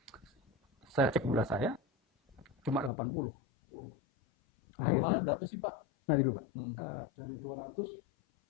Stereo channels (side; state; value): right; drops out; at 2.9 s